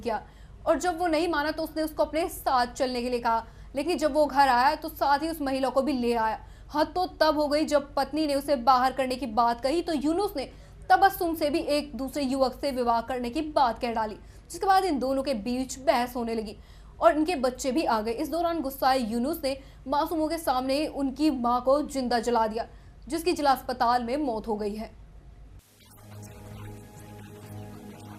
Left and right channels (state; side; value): identical; both; correlation 1.00